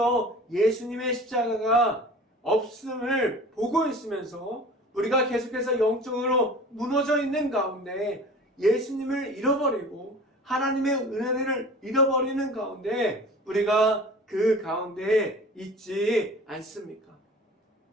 예수님의 십자가가 없음을 보고 있으면서 우리가 계속해서 영적으로 무너져 있는 가운데 예수님을 잃어버리고 하나님의 은혜를 잃어버리는 가운데 우리가 그 가운데 있지 않습니까?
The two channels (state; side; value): normal; both; correlation 0.41